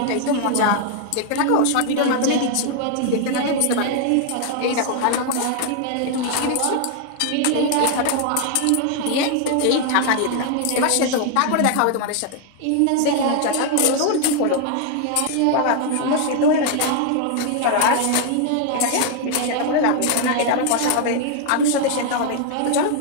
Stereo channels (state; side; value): different; both; correlation 0.00